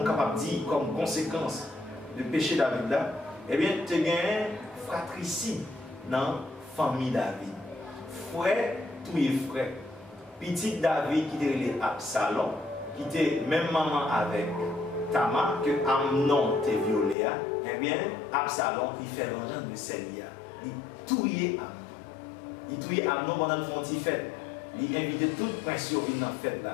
capable de dire comme conséquence du péché David là, eh bien, tu as gagné fratricide dans la famille David. Frère, tous les frères. Petit David qui était Absalom, qui était même maman avec Tamar, que Amnon t'a violé, eh bien, Absalom, il fait vengeance de Célia. Il touillait Amnon. Il touillait Amnon pendant le frontier fête. Il invitait tout le prince à venir dans la fête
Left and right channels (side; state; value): right; drops out; at 17.2 s